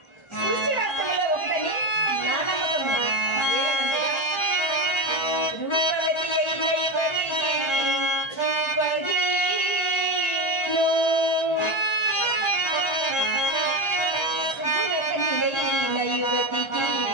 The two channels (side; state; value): right; late; 1.3 ms